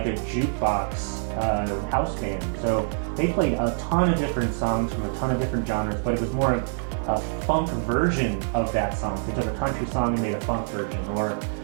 a jukebox house band. So they played a ton of different songs from a ton of different genres, but it was more of a funk version of that song. So they took a country song and made a funk version, or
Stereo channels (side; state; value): left; silent; digital silence